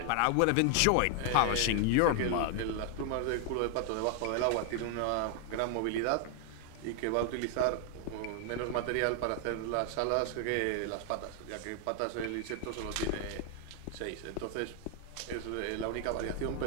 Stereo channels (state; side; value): different; both; correlation 0.00